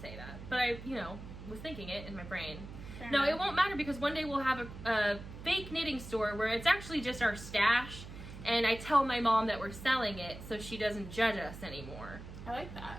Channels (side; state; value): right; noise; hum, 12 dB below the sound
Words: that. But I, was thinking it in my brain. Fair no, enough. It won't matter because one day we'll have a fake knitting store where it's actually just our stash, and I tell my mom that we're selling it so she doesn't judge us anymore. I like that.